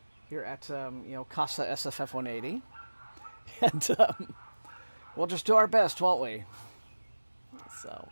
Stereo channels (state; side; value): inverted; both; correlation -1.00